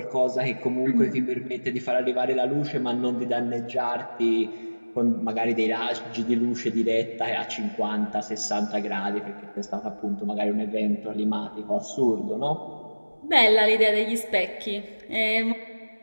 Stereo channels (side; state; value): both; inverted; correlation -1.00